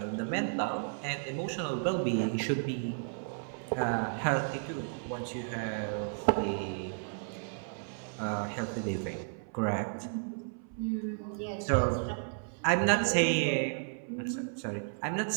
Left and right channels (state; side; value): silent; left; 56 dB below the other